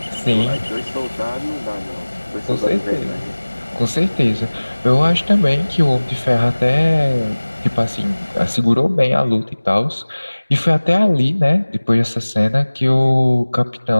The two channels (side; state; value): both; inverted; correlation -1.00